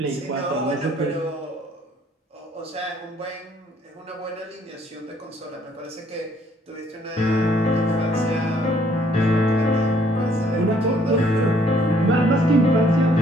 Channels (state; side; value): normal; both; correlation 0.64